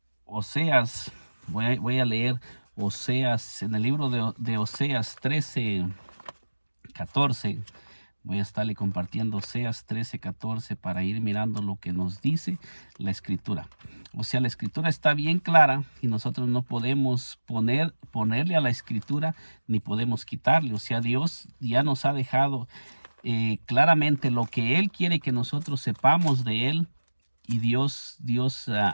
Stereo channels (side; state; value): both; inverted; correlation -1.00